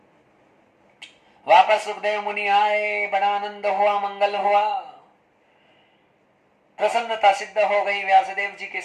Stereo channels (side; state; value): both; identical; correlation 1.00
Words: वापस सुखदेव मुनि आए, बड़ा आनंद हुआ, मंगल हुआ, प्रसन्नता सिद्ध हो गई व्यासदेव जी के